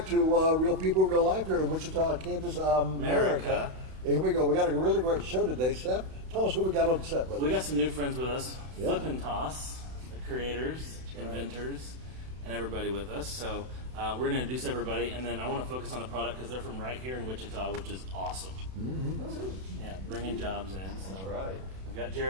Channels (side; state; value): left; late; 32 ms